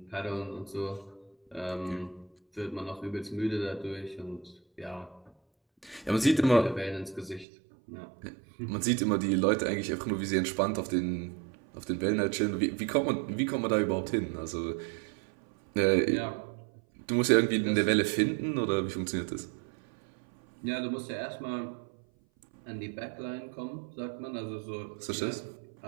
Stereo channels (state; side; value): drops out; left; at 7.5 s